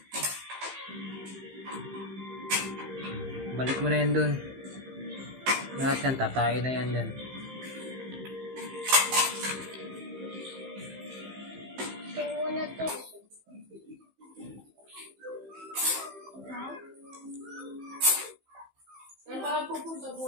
Balik mo na yan dun. Lahat yan, tatayo na yan dyan. Ito muna to. Saan ba pupunta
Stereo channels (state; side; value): late; left; 15 ms